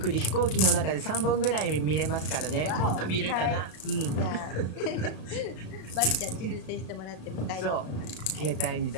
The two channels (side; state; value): right; late; 35 ms